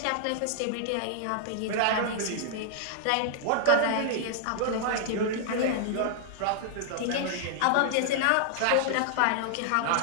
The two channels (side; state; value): both; different; correlation -0.01